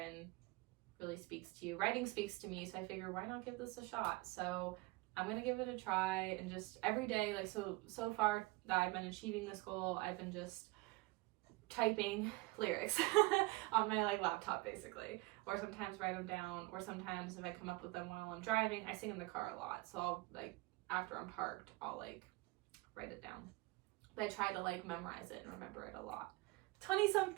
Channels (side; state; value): left; quieter; 22.5 dB